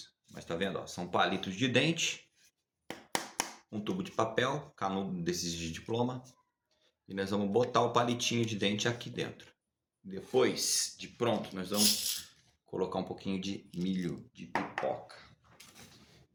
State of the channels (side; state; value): both; identical; correlation 1.00